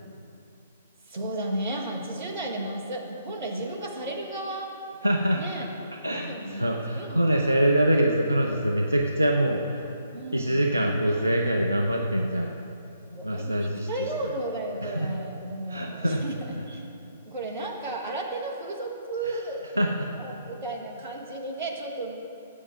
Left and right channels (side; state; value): both; inverted; correlation -0.78